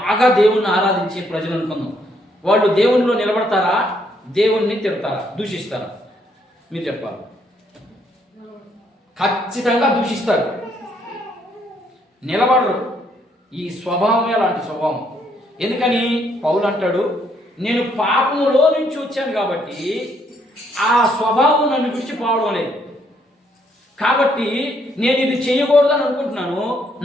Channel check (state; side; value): normal; both; correlation 0.71